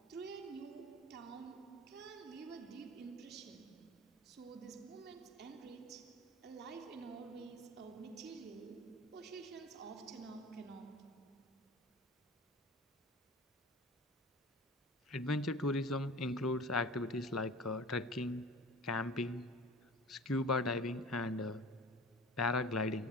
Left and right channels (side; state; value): both; normal; correlation 0.39